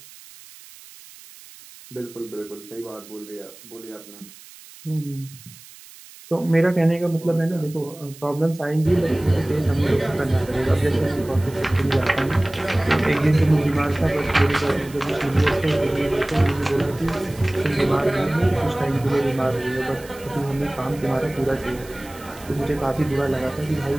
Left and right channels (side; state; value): right; noise; hiss, 20 dB below the sound